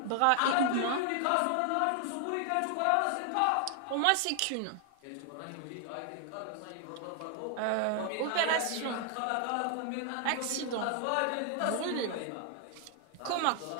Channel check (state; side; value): different; both; correlation 0.00